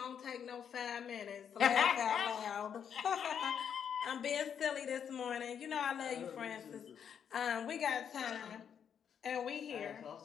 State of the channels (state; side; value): quieter; right; 8.0 dB